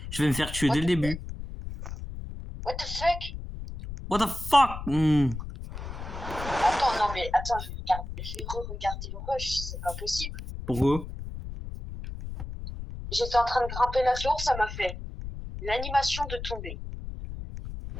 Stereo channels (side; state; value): left; noise; rumble, 8 dB below the sound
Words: Je vais me faire tuer dès le début. What the fuck? What the fuck? Attends, non mais attends, je vais re-regarder le rush, c'est pas possible. Pourquoi? J'étais en train de grimper la tour, ça m'a fait l'animation de tomber.